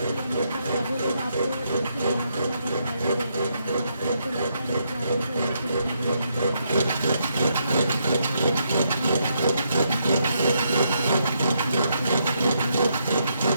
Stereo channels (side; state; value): both; inverted; correlation -0.77